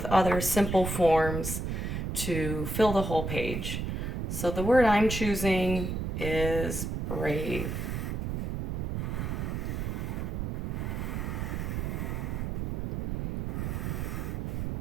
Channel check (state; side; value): noise; right; rumble, 2 dB below the sound